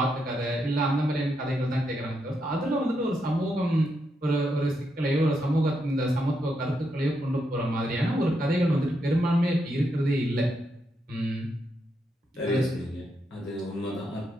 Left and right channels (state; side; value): normal; both; correlation 0.81